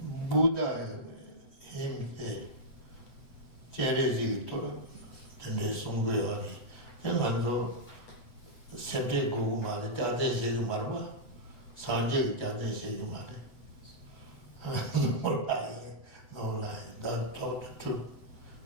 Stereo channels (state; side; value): late; right; 8.0 ms